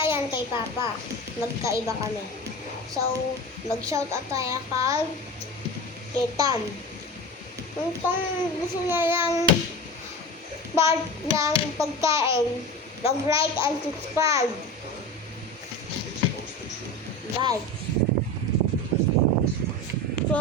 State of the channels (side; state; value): both; normal; correlation 0.29